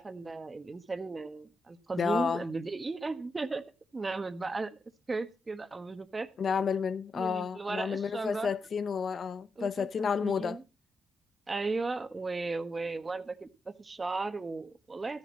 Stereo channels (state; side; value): normal; both; correlation 0.85